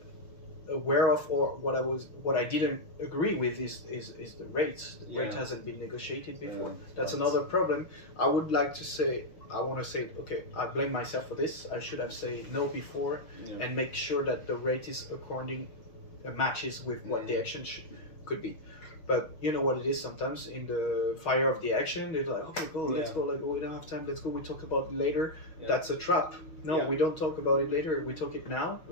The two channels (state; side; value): late; right; 6.3 ms